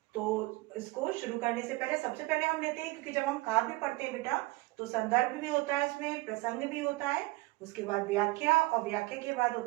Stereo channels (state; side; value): quieter; left; 22.1 dB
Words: तो इसको शुरू करने से पहले सबसे पहले हम लेते हैं, क्योंकि जब हम काव्य पढ़ते हैं बेटा तो संदर्भ भी होता है, इसमें प्रसंग भी होता है, उसके बाद व्याख्या, और व्याख्या के बाद